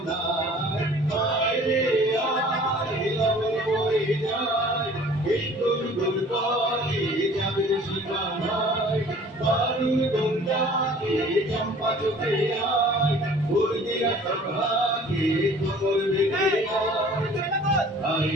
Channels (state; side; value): normal; both; correlation 0.49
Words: আয় রে আয় লগন বয়ে যায়, এই গুল গুল করে যাবে সীমানায়, বালুর বন্যাকে চম্পা চোখে আয়, বলবিনা সভাকে কোমর বেঁধে আয়